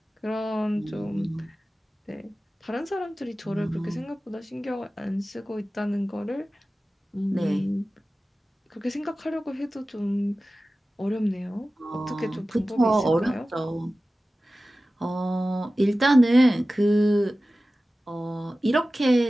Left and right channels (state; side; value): normal; both; correlation 0.96